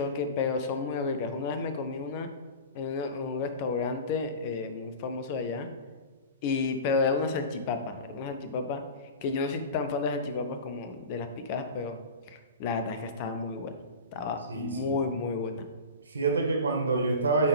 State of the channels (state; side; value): inverted; both; correlation -0.33